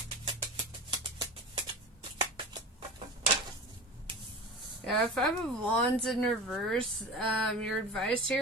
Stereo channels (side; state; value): both; normal; correlation 0.32